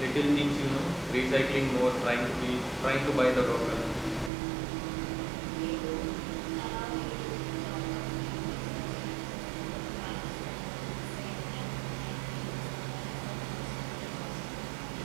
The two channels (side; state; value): left; drops out; at 4.3 s